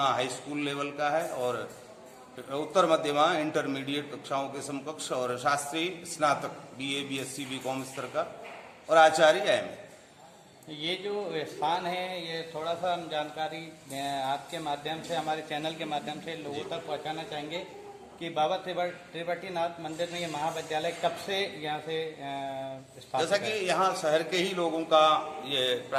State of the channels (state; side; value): identical; both; correlation 1.00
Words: स्कूल लेवल का है, और उत्तर मध्यमा इंटरमीडिएट कक्षाओं के समकक्ष, और शास्त्री स्नातक BA BSc BCom स्तर का, और आचार्य AM। ये जो स्थान है ये थोड़ा सा हम जानकारी आपके माध्यम से, हमारे चैनल के माध्यम से लोगों तक पहुंचाना चाहेंगे कि बाबा त्रिवटीनाथ मंदिर में ये महाविद्यालय कब से यहाँ से स्थापित जैसा कि यहाँ शहर के ही लोगों का, ये